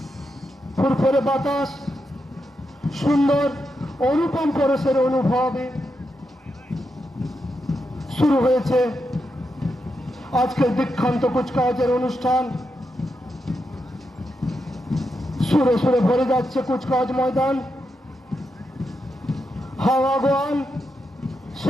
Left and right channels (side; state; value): both; normal; correlation 0.85